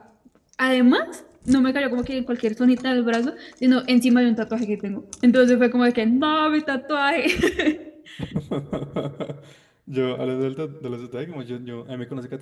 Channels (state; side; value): identical; both; correlation 1.00